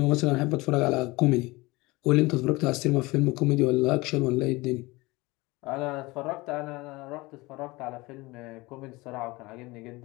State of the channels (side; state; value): right; quieter; 22.3 dB